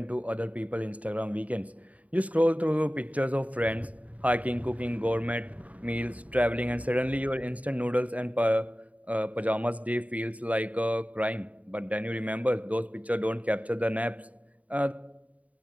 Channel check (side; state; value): left; late; 0.070 ms